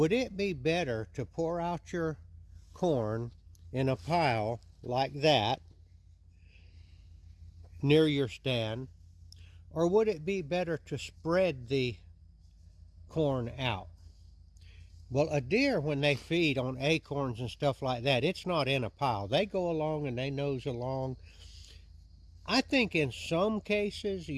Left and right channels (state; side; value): identical; both; correlation 1.00